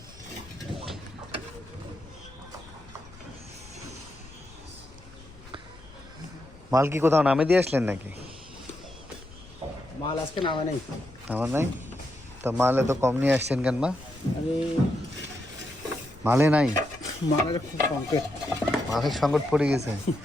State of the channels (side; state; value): left; noise; rumble, 21 dB below the sound